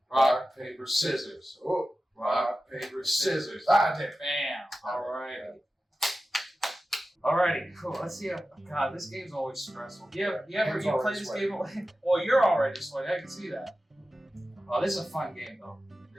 Rock, paper, scissors. Oh. Rock, paper, scissors. Damn. Bam. Alrighty, cool. Let's see. God, this game's always stressful. You play this game? Well, you're already sweaty. I can see that. Oh, this is a fun game though.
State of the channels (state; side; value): normal; both; correlation 0.94